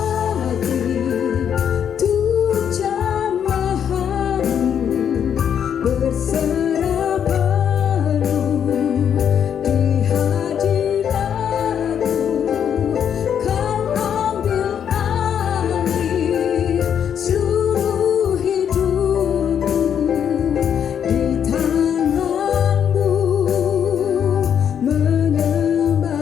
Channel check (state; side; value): quieter; right; 8.5 dB